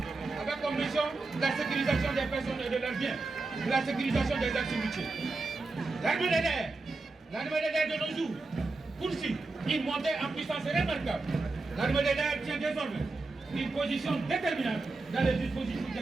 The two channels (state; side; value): quieter; left; 3.5 dB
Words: avec comme mission la sécurisation des personnes et de leurs biens, la sécurisation des activités. L'armée de l'air de nos jours poursuit une montée en puissance remarquable. L'armée de l'air tient désormais une position déterminante dans les dispositifs de